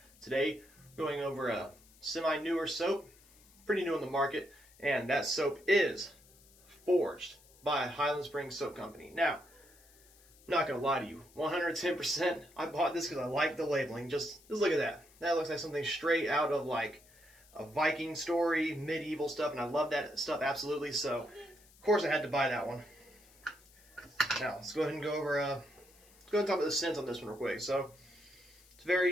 Today, we're going over a semi-newer soap, pretty new on the market, and that soap is forged by Highland Springs Soap Company. Now, I'm not going to lie to you, 110%, I bought this because I like the labeling. Just look at that. That looks like something straight out of like a Viking story, medieval stuff, and I love that stuff absolutely, so of course I had to buy that one. Now, let's go ahead and go over, let's go ahead and talk about the scents on this one real quick. So,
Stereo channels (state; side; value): noise; left; hiss, 26 dB below the sound